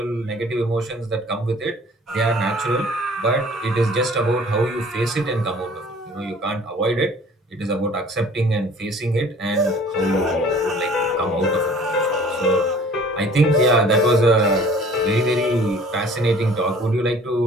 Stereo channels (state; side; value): normal; both; correlation 0.50